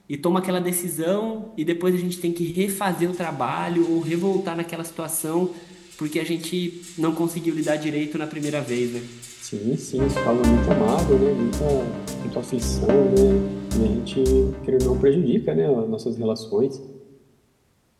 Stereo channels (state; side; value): identical; both; correlation 1.00